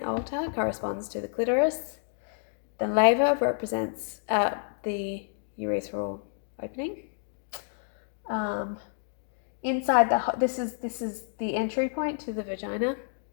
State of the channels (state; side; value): silent; right; digital silence